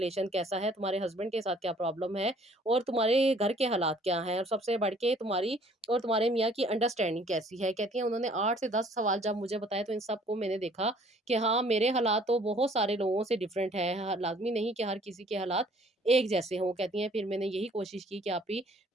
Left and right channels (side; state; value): both; normal; correlation 0.57